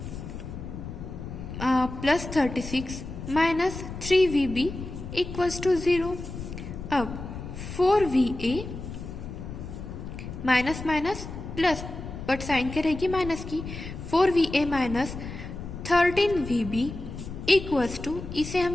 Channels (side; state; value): left; noise; rumble, 9 dB below the sound